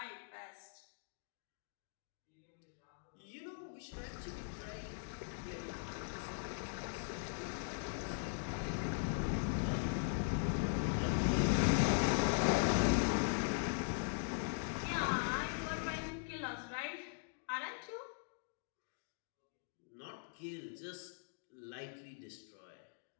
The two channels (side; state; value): right; silent; digital silence